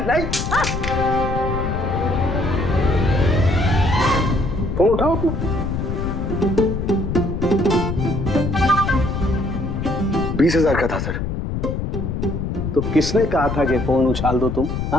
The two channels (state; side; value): noise; left; rumble, 3 dB below the sound